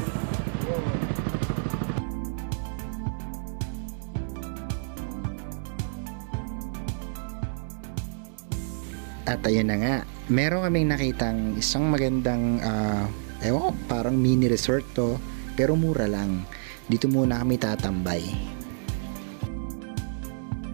At ayun na nga, meron kaming nakitang isang magandang ewan ko, parang mini resort to, pero mura lang. Dito muna kami tatambay. Okay, magpapahinga muna kami dito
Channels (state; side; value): silent; left; digital silence